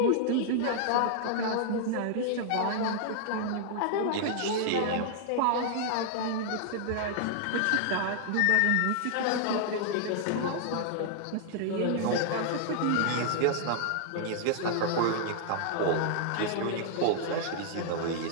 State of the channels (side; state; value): both; different; correlation -0.01